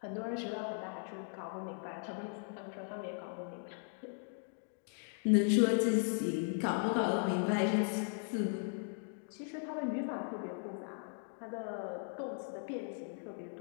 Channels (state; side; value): silent; right; 53 dB below the other